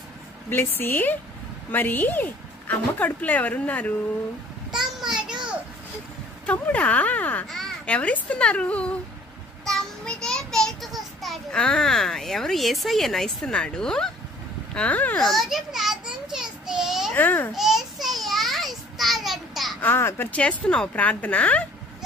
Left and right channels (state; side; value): normal; both; correlation 0.54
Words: Blessy, మరి అమ్మ కడుపులో ఎవరున్నారు? తమ్ముడు. తమ్ముడా? ఎవరిస్తున్నారు? తమ్ముడే బయటకు వస్తాడు. ఎవరు? యేసయ్యనా ఇస్తున్నాడు? రోజు ప్రార్థన చేస్తే యేసయ్య ఇస్తాడంట. మరి చేస్తున్నావు ప్రార్థన?